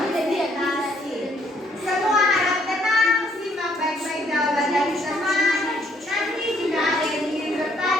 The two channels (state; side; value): normal; both; correlation 0.67